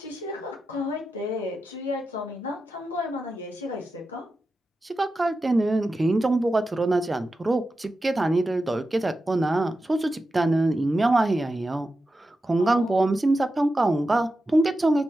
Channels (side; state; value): both; normal; correlation 0.91